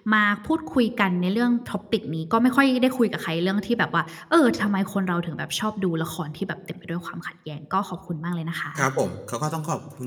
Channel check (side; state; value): both; identical; correlation 1.00